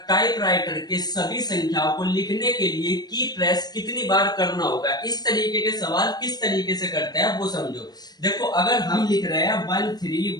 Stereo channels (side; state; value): right; late; 0.19 ms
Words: टाइपराइटर के सभी संख्याओं को लिखने के लिए की प्रेस कितनी बार करना होगा। इस तरीके के सवाल किस तरीके से करते हैं वो समझो। देखो, अगर हम लिख रहे हैं